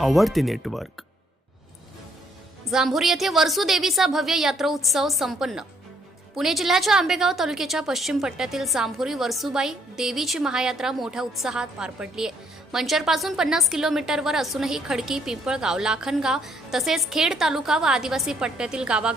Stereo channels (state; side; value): normal; both; correlation 0.69